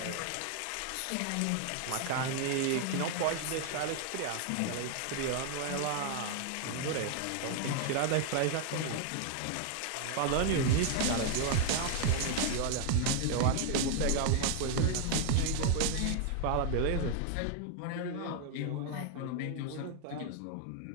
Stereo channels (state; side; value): different; both; correlation 0.00